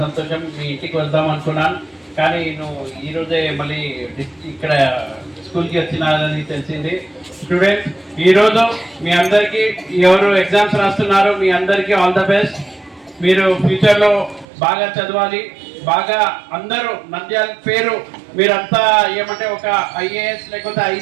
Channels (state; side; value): drops out; left; at 14.5 s